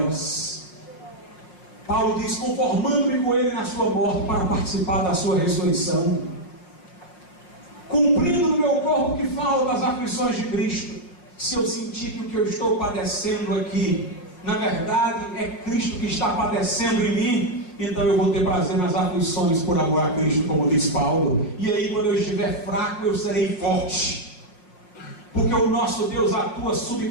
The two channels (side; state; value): right; late; 5.6 ms